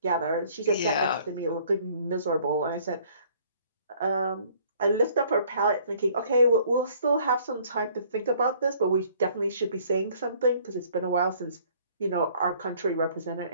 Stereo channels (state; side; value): inverted; both; correlation -0.58